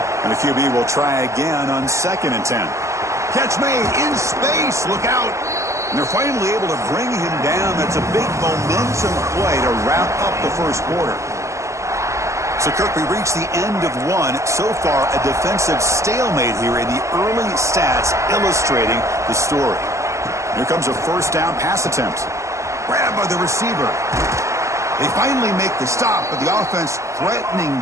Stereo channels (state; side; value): late; left; 0.14 ms